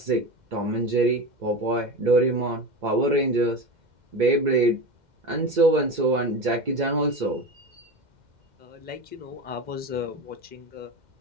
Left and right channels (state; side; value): late; left; 2.1 ms